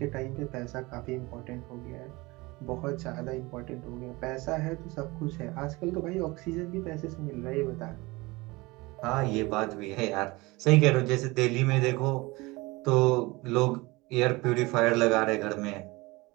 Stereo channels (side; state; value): left; quieter; 22.9 dB